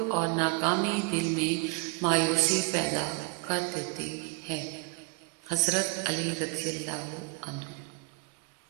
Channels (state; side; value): quieter; left; 30.2 dB